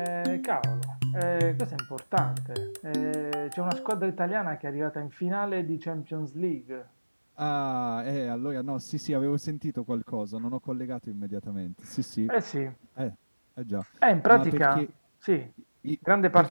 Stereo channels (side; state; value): both; inverted; correlation -1.00